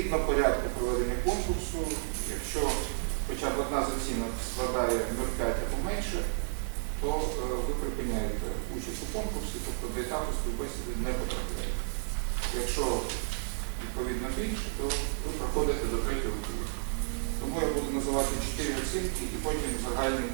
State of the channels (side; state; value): left; silent; digital silence